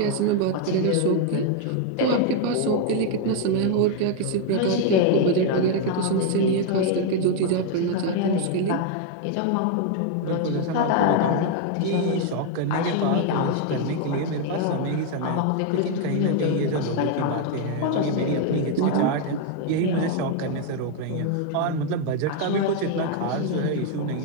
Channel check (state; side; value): different; both; correlation 0.00